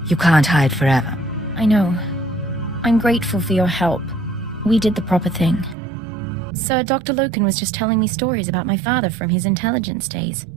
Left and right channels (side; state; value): left; drops out; at 5.8 s